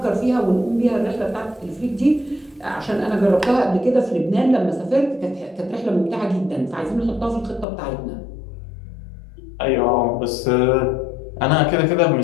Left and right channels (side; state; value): right; drops out; at 7.7 s